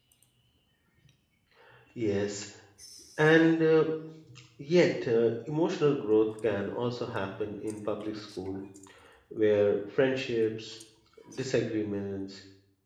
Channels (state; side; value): identical; both; correlation 1.00